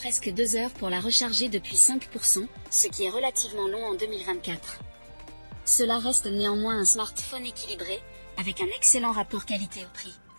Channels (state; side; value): inverted; both; correlation -1.00